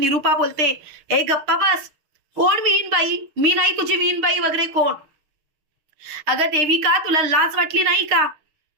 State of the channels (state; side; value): late; left; 6.5 ms